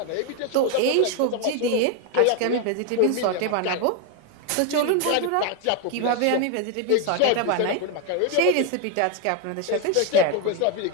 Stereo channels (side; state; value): both; different; correlation 0.01